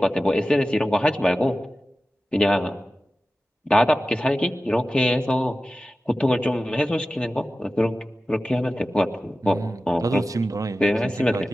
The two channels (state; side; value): normal; both; correlation 0.94